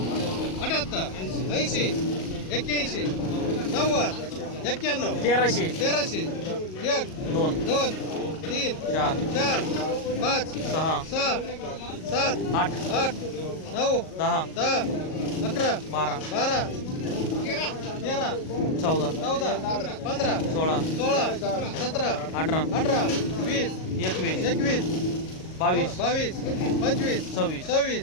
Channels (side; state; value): right; late; 38 ms